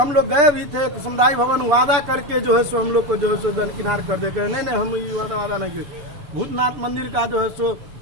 लोग गए भी थे समुदाय भवन, वादा करके जो है सो हम लोग को जो है सो दरकिनार कर देते हैं, नहीं हम ये वादा नहीं किए। भूतनाथ मंदिर का जो है सो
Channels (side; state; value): left; late; 6.9 ms